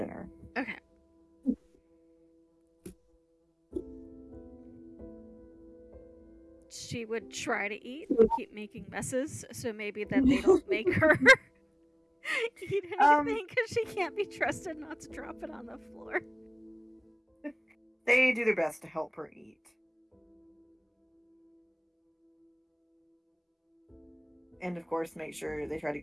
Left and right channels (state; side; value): identical; both; correlation 1.00